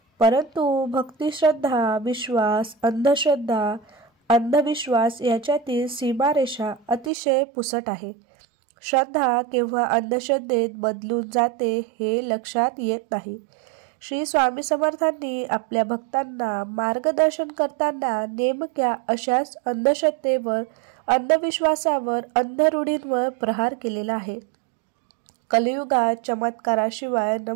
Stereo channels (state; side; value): drops out; left; at 7.1 s